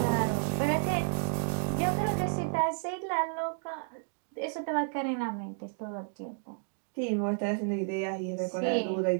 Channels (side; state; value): left; silent; 57 dB below the other